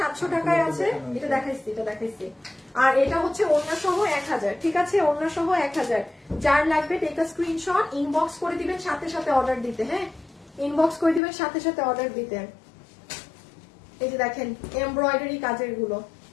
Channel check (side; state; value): right; drops out; at 11.2 s